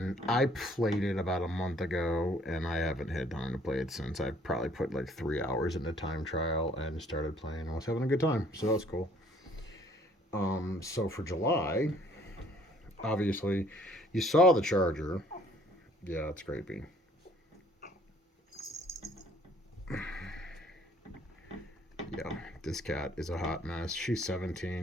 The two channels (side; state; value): both; normal; correlation 0.59